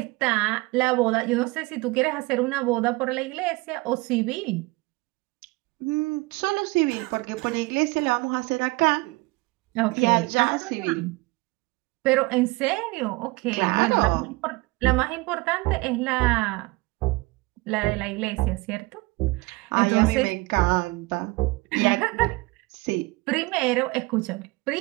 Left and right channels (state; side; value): quieter; left; 23.7 dB